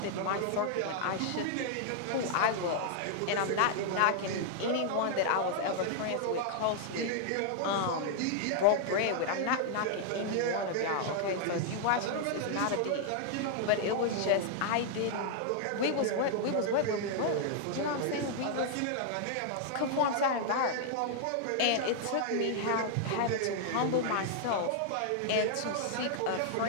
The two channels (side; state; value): both; different; correlation -0.01